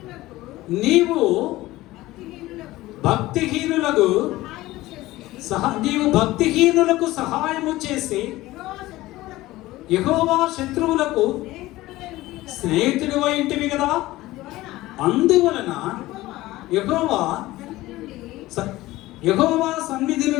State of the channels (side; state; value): right; quieter; 17.6 dB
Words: నీవు భక్తిహీనులకు సహాయము చేసి యెహోవా శత్రువులకు స్నేహితుడు ఇంటివి కదా. అందువలన యెహోవా సన్నిధి